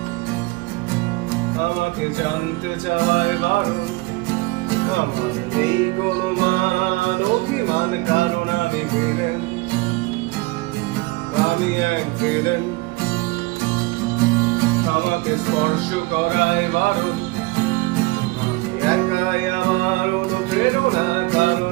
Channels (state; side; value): quieter; left; 22.7 dB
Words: আমাকে জানতে চাওয়ায় বারণ, আমার নেই কোনো মান অভিমান, কারণ আমি ভিলেন। আমি এক ভিলেন, আমাকে স্পর্শ করায় বারণ, আমি একাই আমার অনুপ্রেরণা,